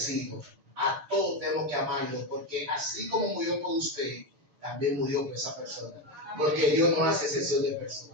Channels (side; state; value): left; late; 6.7 ms